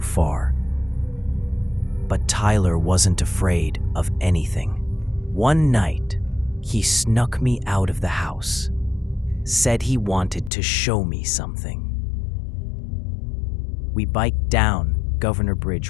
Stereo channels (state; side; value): drops out; right; at 10.5 s